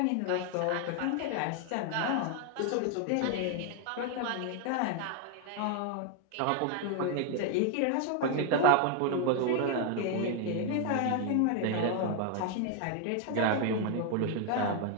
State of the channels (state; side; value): different; both; correlation 0.01